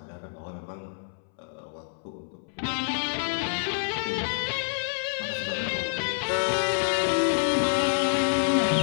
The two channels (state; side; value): silent; right; 60 dB below the other